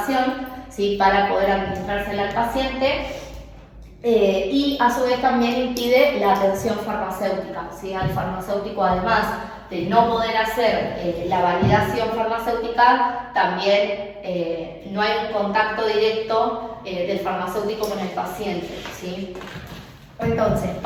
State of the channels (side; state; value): both; identical; correlation 1.00